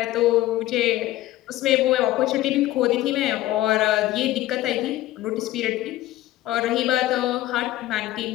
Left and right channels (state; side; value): quieter; right; 15.6 dB